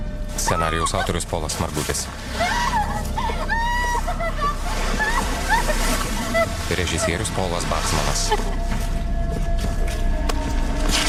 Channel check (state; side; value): identical; both; correlation 1.00